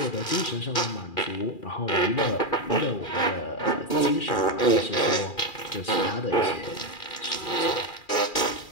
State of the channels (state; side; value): late; right; 2.4 ms